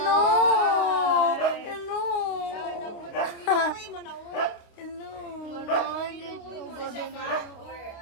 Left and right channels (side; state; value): right; late; 28 ms